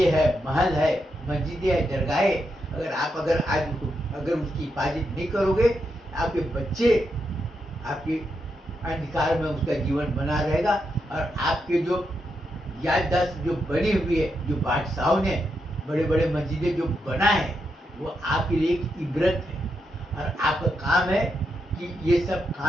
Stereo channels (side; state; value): both; normal; correlation 0.83